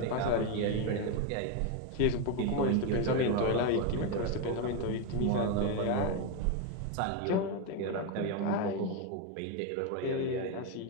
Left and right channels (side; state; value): both; different; correlation 0.02